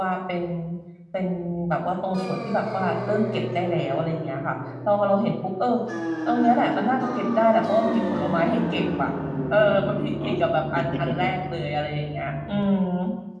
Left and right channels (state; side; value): identical; both; correlation 1.00